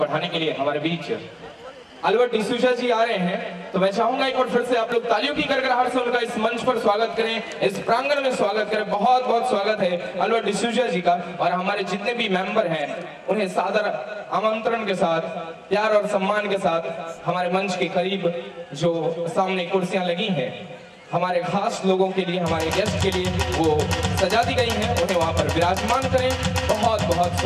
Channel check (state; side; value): identical; both; correlation 1.00